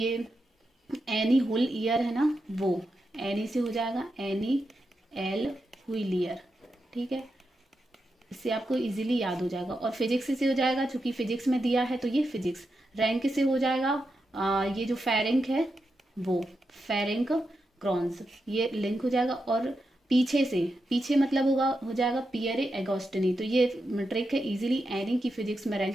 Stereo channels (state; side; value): normal; both; correlation 0.87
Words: एनी हुल ईयर है ना, वो एनी से हो जाएगा एनी एल व्हीलियर। ठीक है, इससे आपको इजीली याद हो जाएगा। और फिजिक्स से हो जाएगा चूंकि फिजिक्स में दिया है तो ये फिजिक्स। रैंक से हो जाएगा ये जो फेरेंक है वो फेरेंक क्रॉन्स, ये लिंक हो जाएगा। और पीछे मतलब हो जाएगा पियरे एगोस्टिनी। तो ये ट्रिक है इजीली एनी की फिजिक्स में